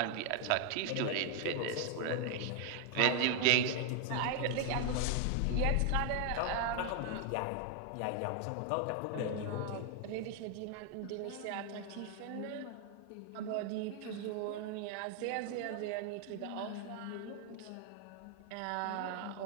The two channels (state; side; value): different; both; correlation 0.00